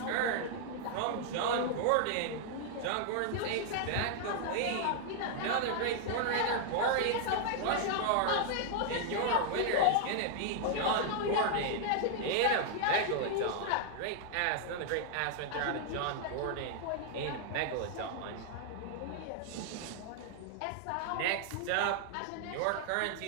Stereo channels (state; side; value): different; both; correlation 0.00